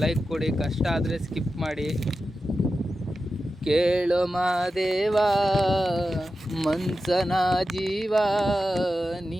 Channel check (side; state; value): both; normal; correlation 0.92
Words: ಲೈಕ್ ಕೊಡಿ, ಕಷ್ಟ ಆದರೆ ಸ್ಕಿಪ್ ಮಾಡಿ. ಕೇಳೋ ಮಾದೇವ ಮನ್ಸನ ಜೀವ,